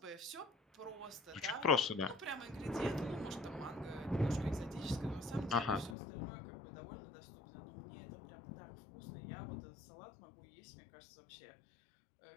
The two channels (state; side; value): drops out; right; at 6.0 s